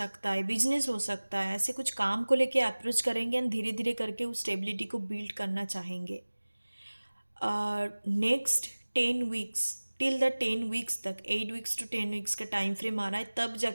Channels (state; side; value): inverted; both; correlation -1.00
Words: है, बिजनेस हो सकता है, ऐसे कुछ काम को लेके अप्रोच करेंगे एंड धीरे धीरे करके उस स्टेबिलिटी को बिल्ड करना चाहेंगे। Next 10 weeks, till the 10 weeks तक, 8 वीक्स to 10 वीक्स का टाइम फ्रेम आ रहा है, तब